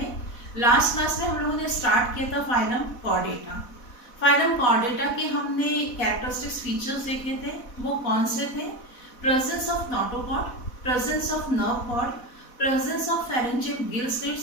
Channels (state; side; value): late; right; 4.1 ms